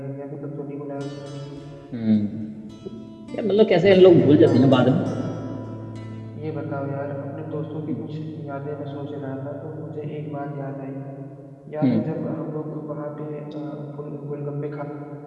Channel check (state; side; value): identical; both; correlation 1.00